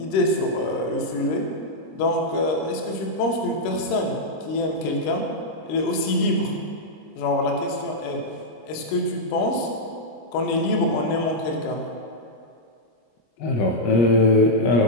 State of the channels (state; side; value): late; right; 26 ms